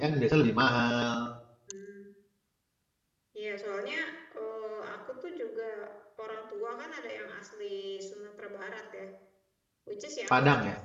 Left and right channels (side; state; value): both; identical; correlation 1.00